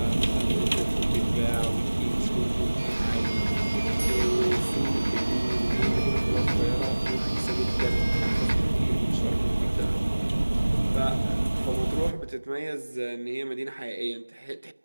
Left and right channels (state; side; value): inverted; both; correlation -1.00